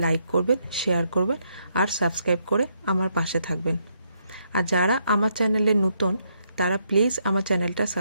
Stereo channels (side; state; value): both; inverted; correlation -0.76